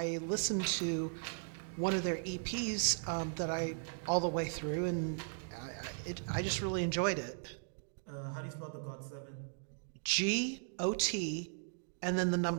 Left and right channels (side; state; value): left; silent; digital silence